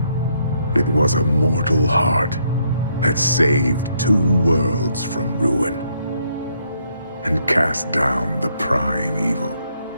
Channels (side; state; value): both; inverted; correlation -0.73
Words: it was a mortal heart that saved 2 worlds from ruin and cast down the prime evil